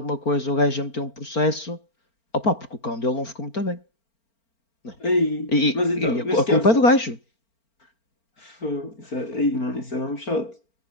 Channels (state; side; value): late; right; 4.4 ms